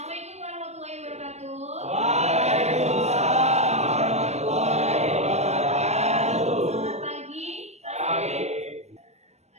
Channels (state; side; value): late; left; 0.32 ms